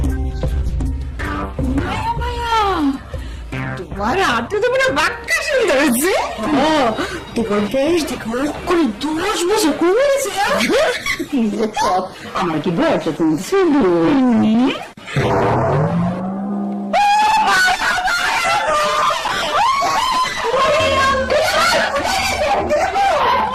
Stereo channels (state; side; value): identical; both; correlation 1.00